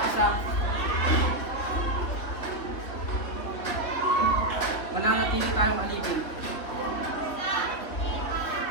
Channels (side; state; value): right; late; 3.7 ms